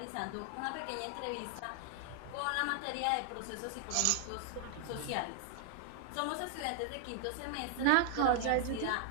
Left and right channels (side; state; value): both; different; correlation 0.00